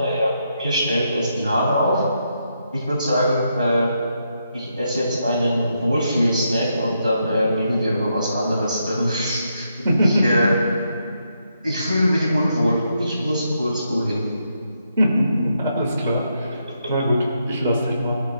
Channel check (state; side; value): inverted; both; correlation -0.80